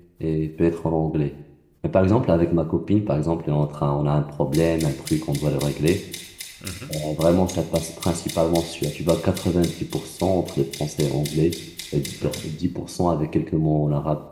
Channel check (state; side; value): identical; both; correlation 1.00